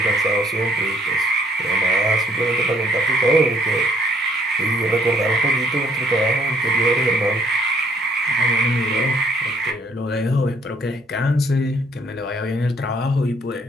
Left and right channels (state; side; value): normal; both; correlation 0.63